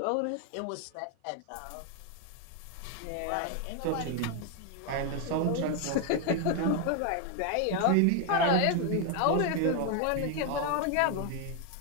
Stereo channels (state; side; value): different; both; correlation 0.01